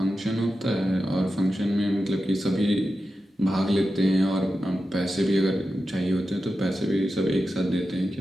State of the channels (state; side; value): normal; both; correlation 0.91